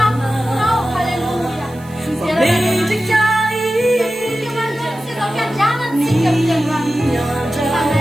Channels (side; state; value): right; noise; hiss, 24 dB below the sound